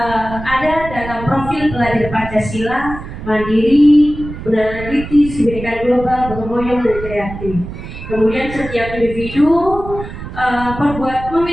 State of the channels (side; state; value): right; noise; rumble, 10 dB below the sound